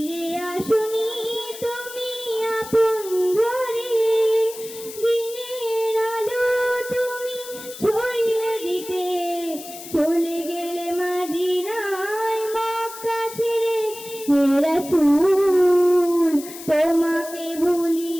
আসুনি তুমি আপন ঘরে। দিনের আলো তুমি ছড়িয়ে দিতে চলে গেলে মদিনায় মক্কা ছেড়ে। হে রাসূল তোমাকে ভুলি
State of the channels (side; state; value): left; noise; hiss, 14 dB below the sound